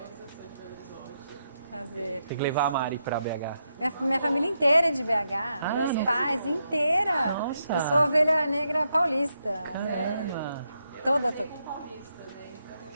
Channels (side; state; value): both; inverted; correlation -0.82